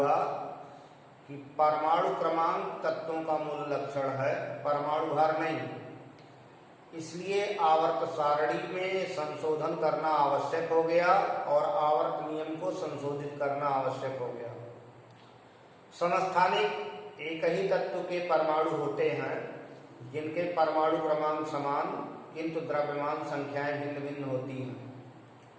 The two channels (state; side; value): identical; both; correlation 1.00